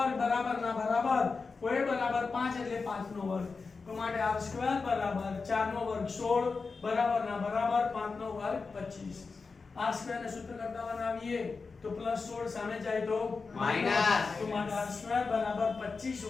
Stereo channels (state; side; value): quieter; right; 4.5 dB